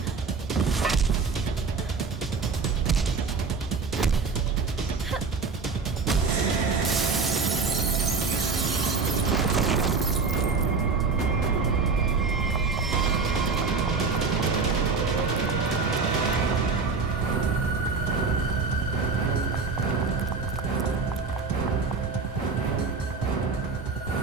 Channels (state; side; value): quieter; left; 4.7 dB